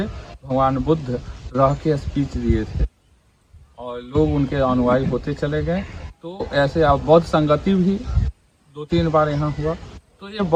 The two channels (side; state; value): both; identical; correlation 1.00